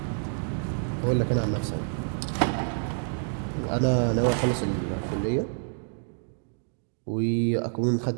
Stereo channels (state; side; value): silent; left; 59 dB below the other